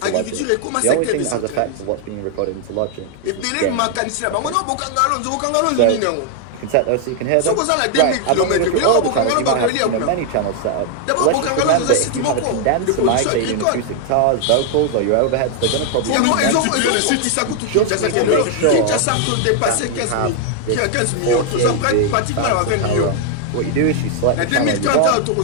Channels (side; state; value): both; different; correlation 0.00